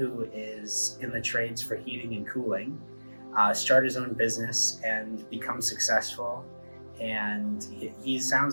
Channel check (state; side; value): inverted; both; correlation -1.00